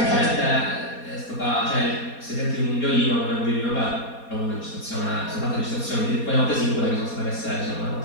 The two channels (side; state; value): right; late; 4.2 ms